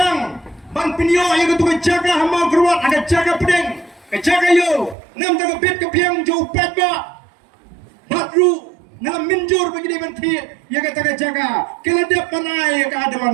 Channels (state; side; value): drops out; left; at 5.0 s